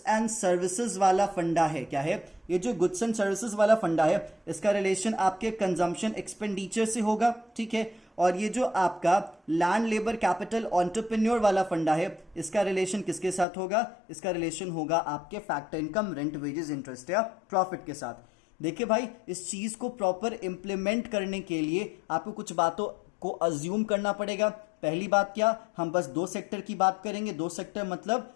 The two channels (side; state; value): right; drops out; at 13.5 s